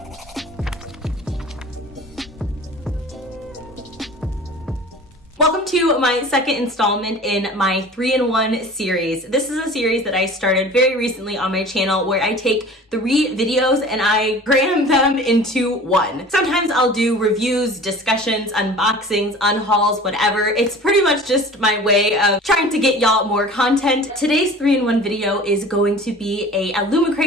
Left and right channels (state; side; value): normal; both; correlation 0.42